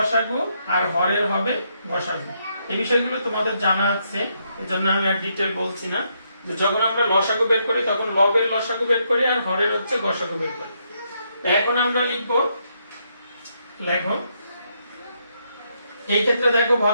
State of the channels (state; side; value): inverted; both; correlation -0.77